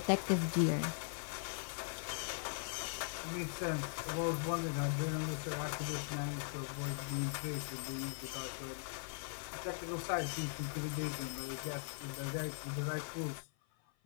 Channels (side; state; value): right; silent; 51 dB below the other